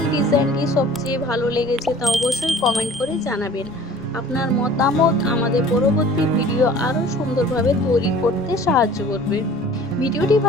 ডিজাইনটি সবচেয়ে ভালো লেগেছে তা অবশ্যই কমেন্ট করে জানাবেন। আপনার মতামত আমাদের পরবর্তী ভিডিও আরও সুন্দরভাবে তৈরি করতে সাহায্য করবে। ভিডিওটি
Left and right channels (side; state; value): right; noise; hum, 25 dB below the sound